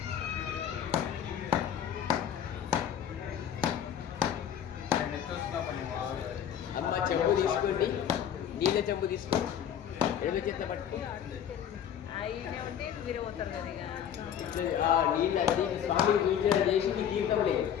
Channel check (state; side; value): quieter; right; 9.3 dB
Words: అమ్మ చెంబు తీసుకోండి, నీళ్ళ చెంబు తీసుకోండి. ఎడమ చేత పట్టుకో. నీళ్ళు అన్ని స్వామికి పూజ చేసి మీ తీర్థం లేదు.